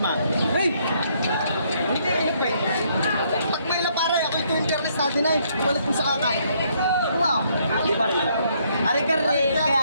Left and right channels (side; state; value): both; inverted; correlation -0.70